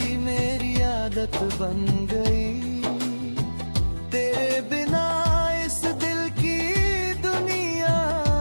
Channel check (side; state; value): both; inverted; correlation -1.00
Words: मेरी आदत बन गई। तेरे बिना इस दिल की दुनिया